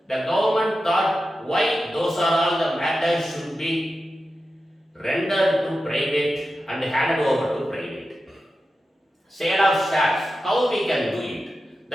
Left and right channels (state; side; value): normal; both; correlation 0.92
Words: the government thought why those are all the matters should be rendered to private and handed over to private. Sale of shares, how we can do it?